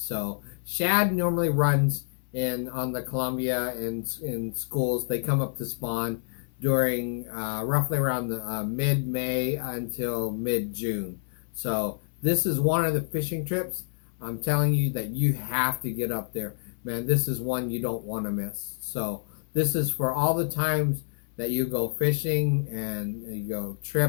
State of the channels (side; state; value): right; silent; digital silence